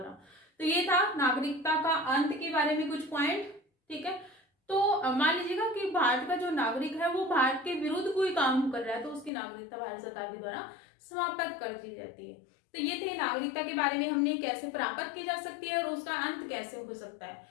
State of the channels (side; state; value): right; drops out; at 9.3 s